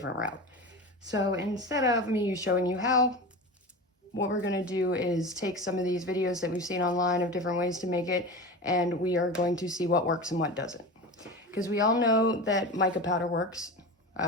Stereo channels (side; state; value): both; normal; correlation 0.28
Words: route. So instead of me showing you how, what we're going to do is take some of these videos that we've seen online of different ways to make it, and we are going to see what works and what doesn't. Because we all know that mica powder works,